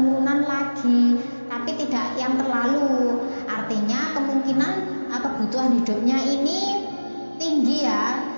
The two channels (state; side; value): inverted; both; correlation -1.00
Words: lagi, tapi tidak yang terlalu. Artinya kemungkinan kebutuhan hidupnya ini tinggi ya.